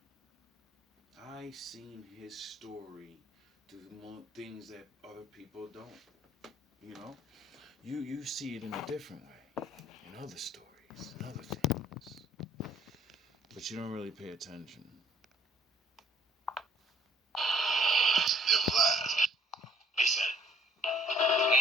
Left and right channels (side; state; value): both; normal; correlation 0.60